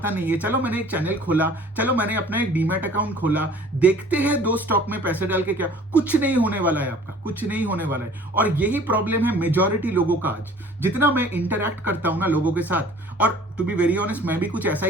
नहीं है, चलो मैंने एक चैनल खोला, चलो मैंने अपना एक डीमैट अकाउंट खोला, देखते हैं 2 स्टॉक में पैसे डाल के क्या, कुछ नहीं होने वाला है आपका, कुछ नहीं होने वाला है। और यही प्रॉब्लम है मेजॉरिटी लोगों का आज। जितना मैं इंटरैक्ट करता हूं ना लोगों के साथ, और टू बी वेरी ऑनेस्ट मैं भी कुछ ऐसा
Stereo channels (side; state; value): both; normal; correlation 0.50